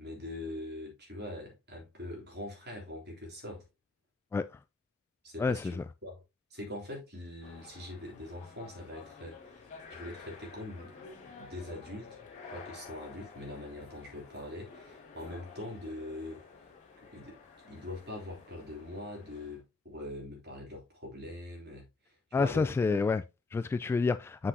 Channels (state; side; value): quieter; right; 3.3 dB